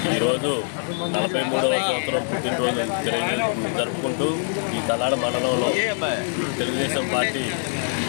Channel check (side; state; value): right; silent; digital silence